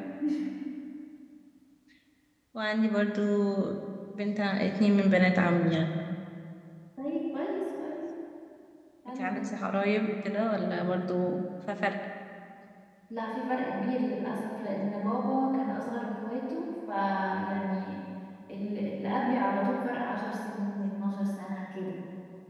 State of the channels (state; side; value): identical; both; correlation 1.00